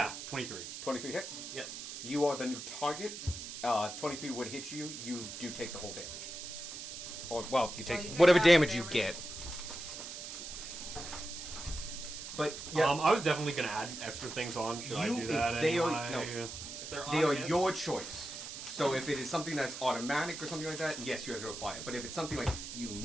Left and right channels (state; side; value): noise; right; hiss, 9 dB below the sound